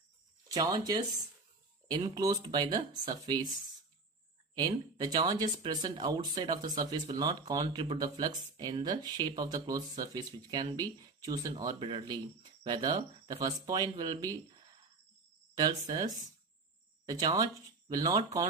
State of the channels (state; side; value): quieter; left; 3.7 dB